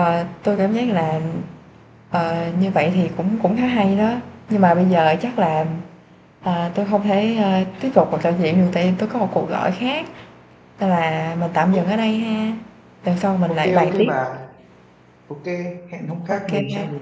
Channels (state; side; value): identical; both; correlation 1.00